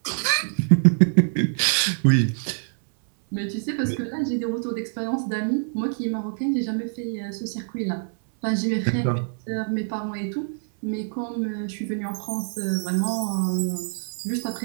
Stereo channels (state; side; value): silent; left; 62 dB below the other